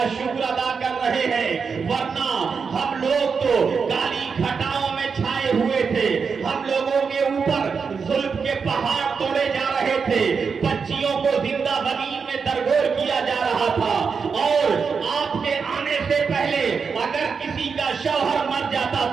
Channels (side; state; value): left; quieter; 5.6 dB